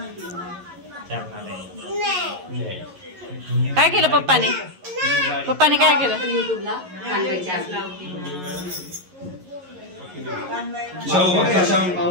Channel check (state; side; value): late; left; 11 ms